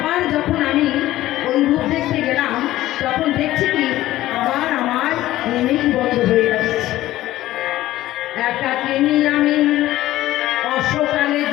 যখন আমি ওই রূপ দেখতে গেলাম তখন দেখছি কি আবার আমার নিমিক বন্ধ হয়ে যাচ্ছে। একাকিনী আমি অশ্বকালে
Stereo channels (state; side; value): quieter; right; 15.3 dB